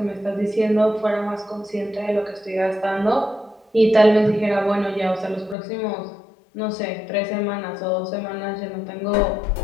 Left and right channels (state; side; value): drops out; right; at 5.6 s